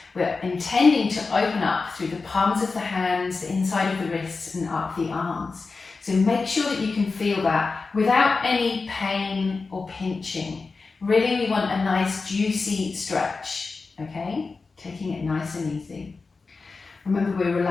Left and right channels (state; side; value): quieter; right; 4.2 dB